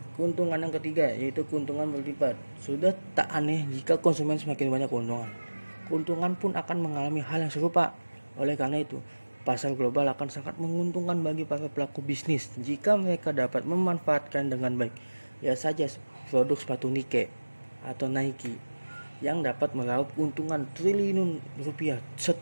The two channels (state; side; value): inverted; both; correlation -1.00